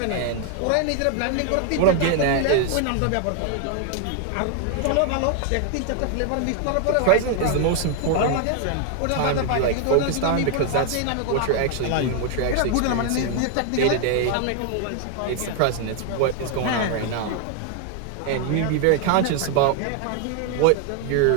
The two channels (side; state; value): both; different; correlation 0.00